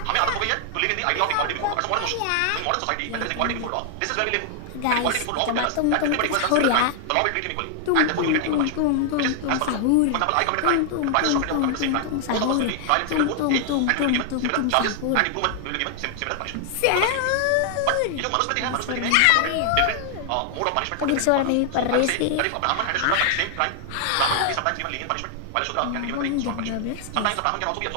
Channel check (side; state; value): both; different; correlation 0.00